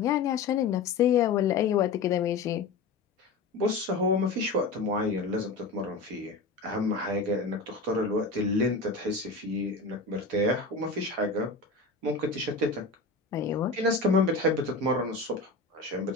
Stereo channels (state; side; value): quieter; right; 3.9 dB